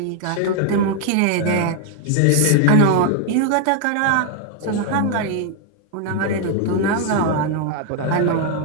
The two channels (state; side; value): different; both; correlation 0.00